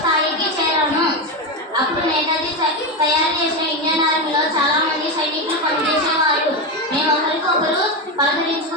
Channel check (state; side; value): normal; both; correlation 0.13